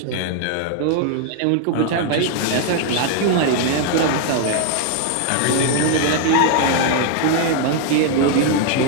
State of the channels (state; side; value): different; both; correlation 0.00